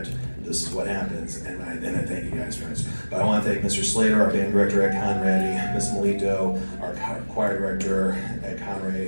this is what happens, and I thank you guys for it. But I want to thank Mr. Slater, our band director at Conrady, Ms. Melito, our choir director at Conrady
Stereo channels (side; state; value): both; inverted; correlation -1.00